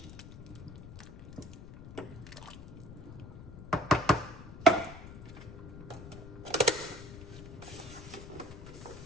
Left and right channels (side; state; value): left; noise; rumble, 13 dB below the sound